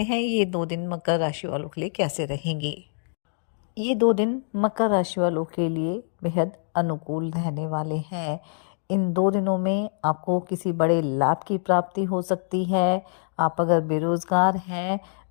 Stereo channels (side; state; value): right; silent; digital silence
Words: हैं ये 2 दिन मकर राशि वालों के लिए कैसे रहेंगे। ये 2 दिन मकर राशि वालों के लिए बेहद अनुकूल रहने वाले हैं। इन 2 दिनों में आपको किसी बड़े लाभ की प्राप्ति हो सकती है। आप अगर बेरोजगार हैं